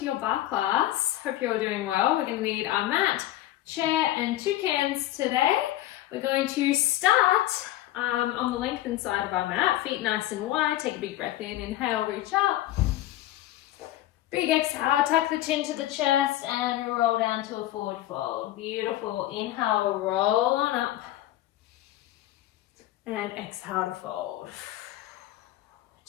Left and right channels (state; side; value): quieter; right; 14.8 dB